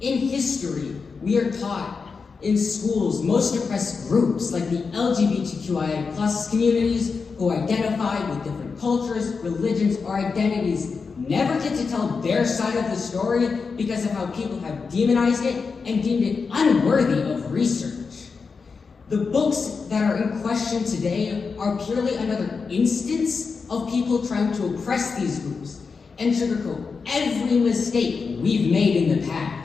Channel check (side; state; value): right; quieter; 5.0 dB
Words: history, we are taught in schools most oppressed groups like the LGBTQIA plus communities who identify with different cultures, religions, or identities never get to tell their side of the story because of how people have demonized it and deemed it unworthy of research. The books that are in question today are purely another instance of people trying to oppress these groups and sugarcoat every mistake we've made in the